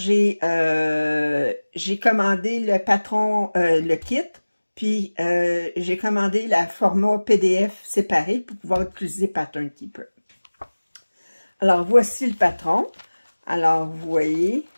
commandé le patron, le kit, puis j'ai commandé la format PDF séparé pour pouvoir utiliser Pattern Keeper. Alors, voici le patron. Alors, vous voyez.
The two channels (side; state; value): both; inverted; correlation -1.00